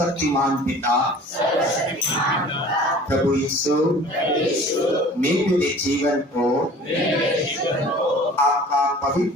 पिता प्रभु यीशु मैं मेरे जीवन को आपका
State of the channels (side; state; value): both; normal; correlation 0.46